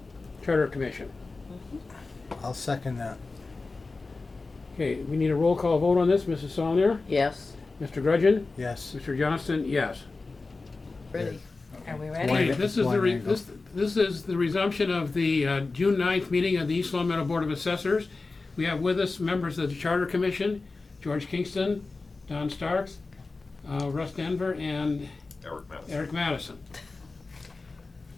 Charter Commission. I'll second that. Okay, we need a roll call vote on this. Mrs. Saulnier? Yes. Mr. Grudgeon? Yes. Mr. Johnston? Yes. Ready. Are we One- ready? Okay, this is one angle. this is the resumption of the June 9th meeting of the East Long Meadow Board of Assessors. We have with us members of the Charter Commission, George Kingston, Don Starks, Russ Denver, and Eric Madison.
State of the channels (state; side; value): quieter; right; 3.7 dB